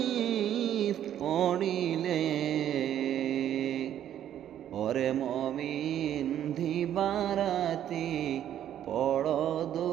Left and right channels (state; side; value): quieter; left; 10.8 dB